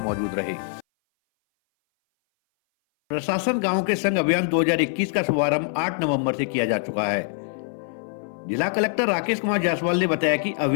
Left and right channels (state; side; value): silent; right; 59 dB below the other